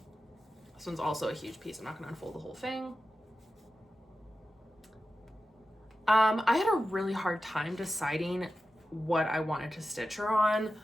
This one's also a huge piece. I'm not gonna unfold the whole thing. I had a really hard time deciding what I wanted to stitch her on,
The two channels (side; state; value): both; normal; correlation 0.92